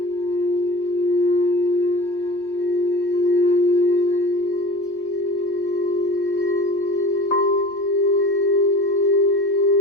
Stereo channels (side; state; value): right; late; 3.2 ms